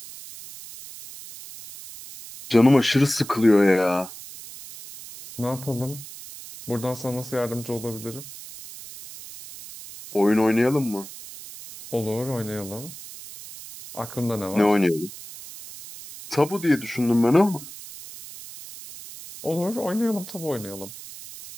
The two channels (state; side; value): noise; right; hiss, 14 dB below the sound